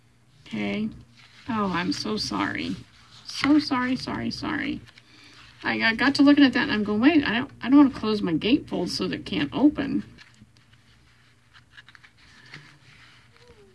Okay. Oh, I'm so sorry. So sorry, sorry, sorry. I got to looking at that and I'm going, wait, I don't want to close my gatefold so that it can't open.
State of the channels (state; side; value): identical; both; correlation 1.00